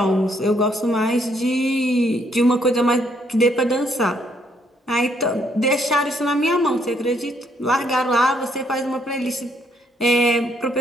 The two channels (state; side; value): normal; both; correlation 0.70